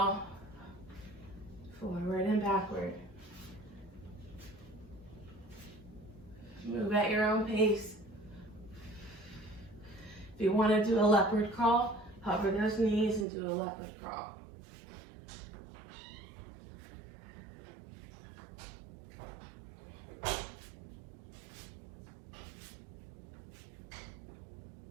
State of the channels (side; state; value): left; drops out; at 13.2 s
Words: Forward and backward. Move at your own pace. If you want to do a leopard crawl, hover those knees and do a leopard crawl.